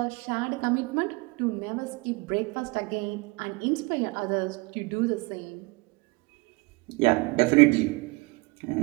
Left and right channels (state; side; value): quieter; left; 26.5 dB